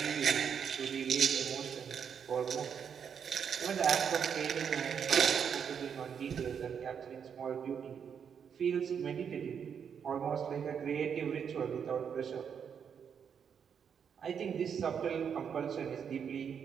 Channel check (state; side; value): quieter; left; 7.4 dB